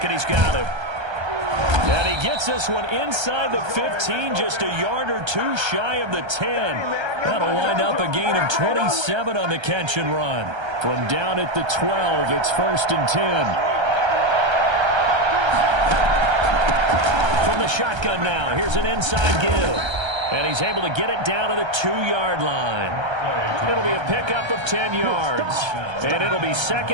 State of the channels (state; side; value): late; left; 1.3 ms